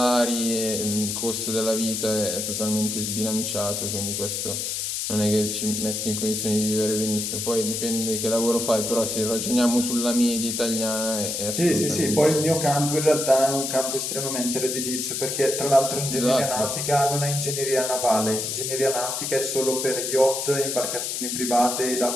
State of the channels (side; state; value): left; noise; hiss, 2 dB below the sound